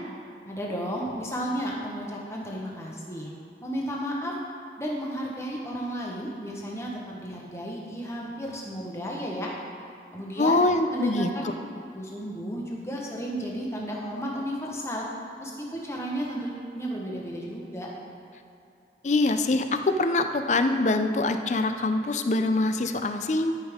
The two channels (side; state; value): both; normal; correlation 0.47